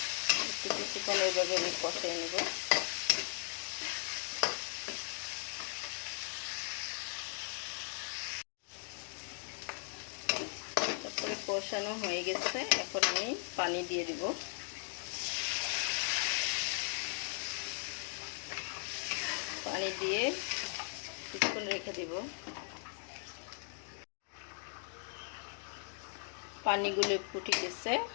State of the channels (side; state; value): right; silent; 52 dB below the other